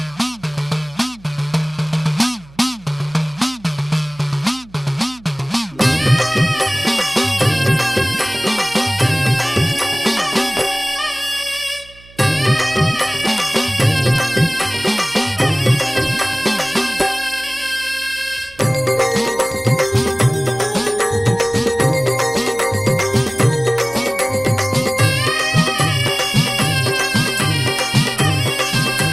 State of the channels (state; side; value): noise; right; hum, 24 dB below the sound